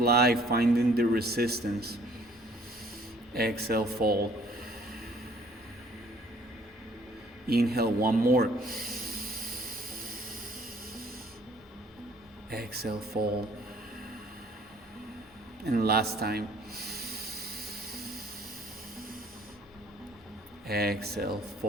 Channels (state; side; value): normal; both; correlation 0.59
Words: finding the resistance. Exhale, fold. Inhale, one more. Exhale, fold. And last time. Exhale,